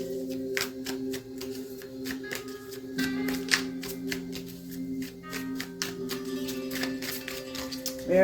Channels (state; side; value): identical; both; correlation 1.00